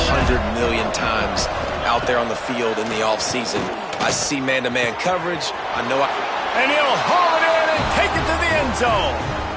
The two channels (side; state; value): both; identical; correlation 1.00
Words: million times out there on the field in the offseason. I see man-to-man coverage. And he'll haul it in and take it to the end zone.